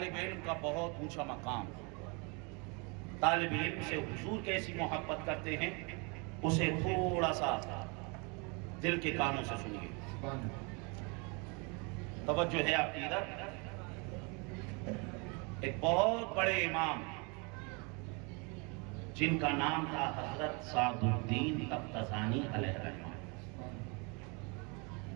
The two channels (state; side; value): quieter; left; 31.8 dB